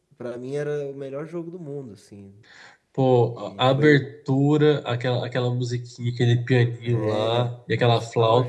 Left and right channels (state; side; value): identical; both; correlation 1.00